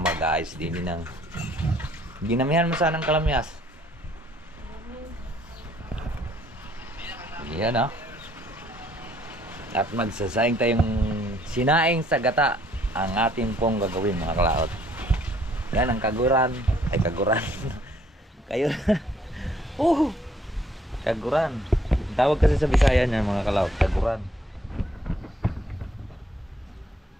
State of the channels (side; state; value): both; normal; correlation 0.63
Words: mag-ayos din ng ginamihan mo sana ng kalamyas. Yan ah. At magsasaing tayong sinaing sa gata ang ating pong gagawin mga kalaot. Yan ang kaguran. Ay kaguran. Kayo. Kaguran. Tawag kasi sa Bisaya niyan mga kalaot. Kaguran.